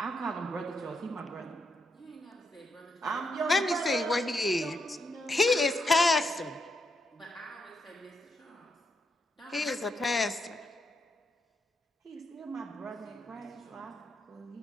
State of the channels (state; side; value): normal; both; correlation 0.80